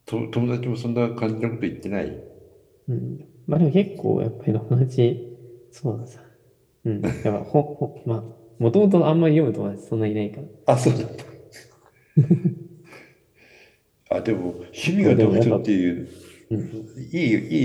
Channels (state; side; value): identical; both; correlation 1.00